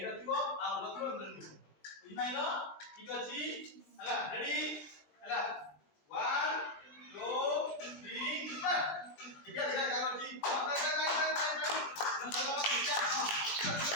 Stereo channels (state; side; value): late; right; 20 ms